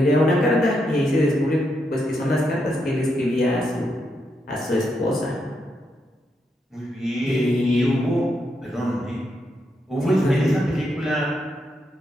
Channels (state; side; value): normal; both; correlation 0.81